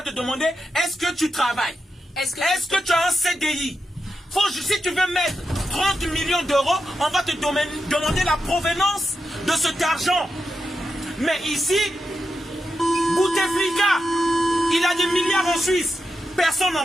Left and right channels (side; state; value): both; normal; correlation 0.88